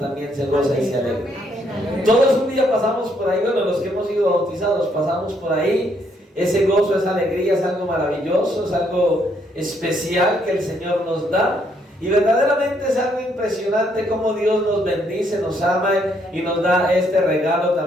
se goza y se alegra. Todos un día pasamos por ahí, bueno, los que hemos sido bautizados pasamos por ahí. Ese gozo, esa alegría es algo maravilloso, es algo especial que el Señor nos da. Y verdaderamente es algo impresionante cómo Dios nos bendice, nos ama y nos da este regalo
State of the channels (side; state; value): both; normal; correlation 0.71